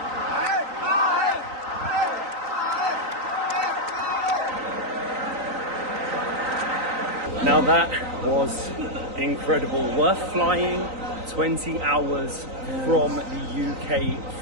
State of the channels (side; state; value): left; late; 3.9 ms